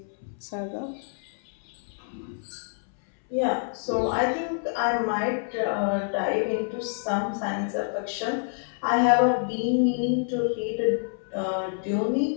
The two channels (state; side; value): silent; right; 60 dB below the other